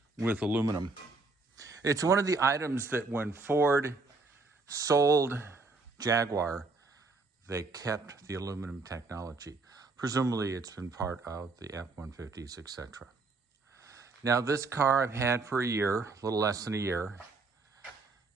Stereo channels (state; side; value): quieter; left; 3.7 dB